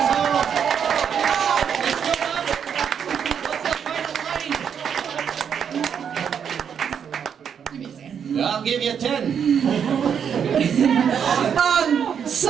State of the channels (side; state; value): left; quieter; 7.7 dB